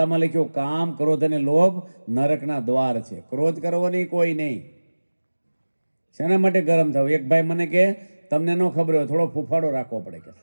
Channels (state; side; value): inverted; both; correlation -1.00